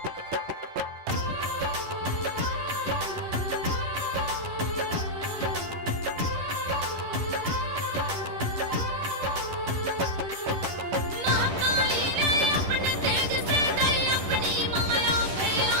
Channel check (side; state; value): left; late; 10 ms